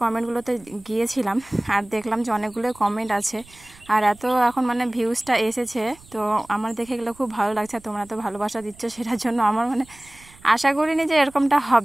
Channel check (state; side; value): noise; right; rumble, 25 dB below the sound